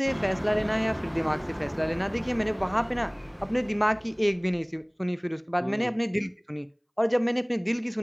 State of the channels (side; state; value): both; identical; correlation 1.00